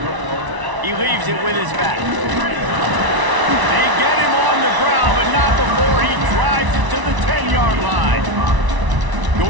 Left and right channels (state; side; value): late; left; 1.0 ms